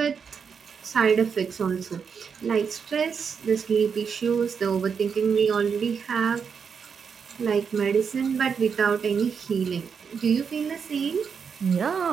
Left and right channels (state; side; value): quieter; left; 6.3 dB